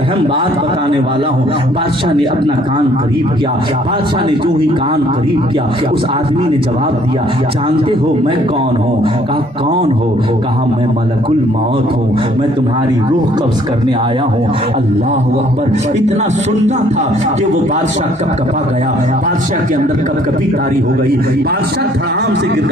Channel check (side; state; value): both; normal; correlation 0.61